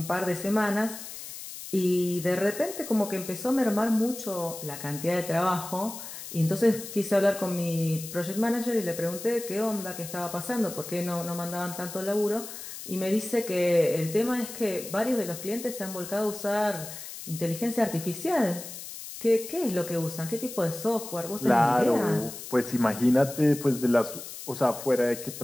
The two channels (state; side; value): noise; left; hiss, 11 dB below the sound